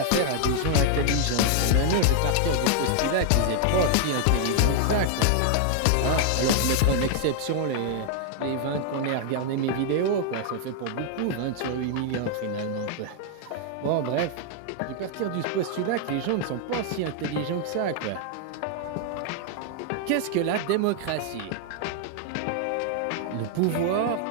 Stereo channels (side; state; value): both; different; correlation 0.00